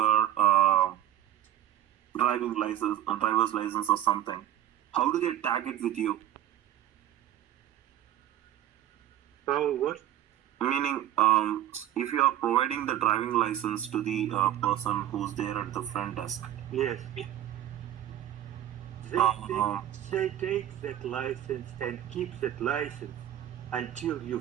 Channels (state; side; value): quieter; left; 12.2 dB